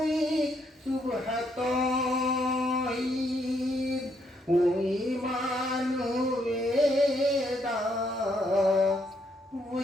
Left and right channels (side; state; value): both; normal; correlation 0.74